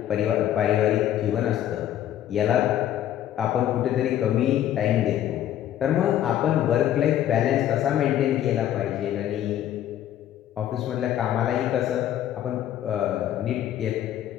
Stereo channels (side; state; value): right; quieter; 11.6 dB